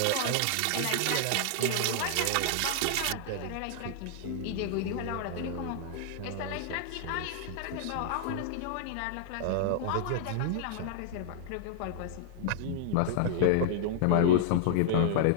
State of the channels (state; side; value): different; both; correlation -0.01